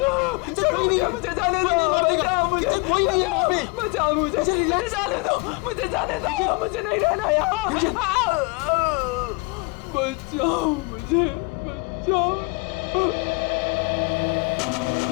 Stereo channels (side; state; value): right; quieter; 28.2 dB